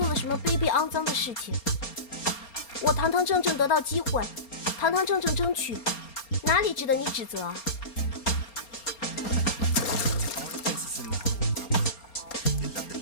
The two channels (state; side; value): late; right; 4.3 ms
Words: 了什么卑鄙肮脏的事情。我堂堂正正得到机会，堂堂正正争取，哪里值得你指责啊？